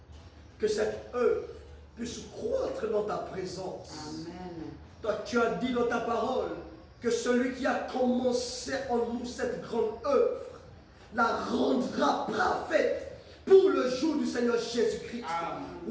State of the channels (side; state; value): both; identical; correlation 1.00